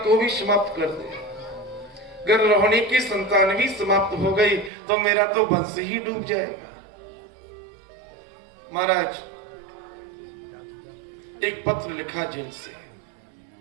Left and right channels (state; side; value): drops out; left; at 4.7 s